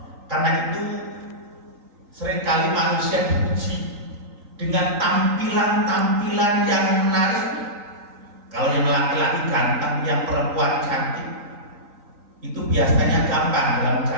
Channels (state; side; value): late; left; 3.9 ms